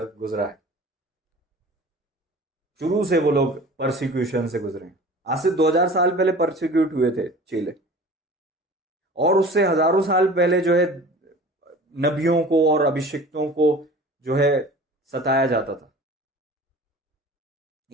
है। शुरू से वो लोग परसिक्यूशन से गुजरे हैं। आज से 2000 साल पहले परसिक्यूट हुए थे चेले, और उससे हजारों साल पहले जो है नबियों को और अभिषिक्तों को जो है सताया जाता था।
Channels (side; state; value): both; normal; correlation 0.42